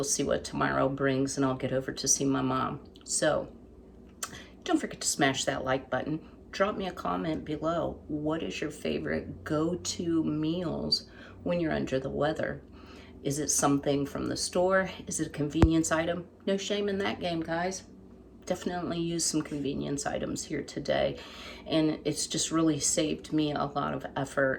see what tomorrow brings, and I'll get over to see my mom. So don't forget to smash that like button. Drop me a comment below. What is your favorite go-to meals when you're under the weather? Is it something from the store? Is it a convenience item? No shame in that game, guys. Definitely use some convenience items here today. And it's just really saved me a lot of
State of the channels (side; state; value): both; identical; correlation 1.00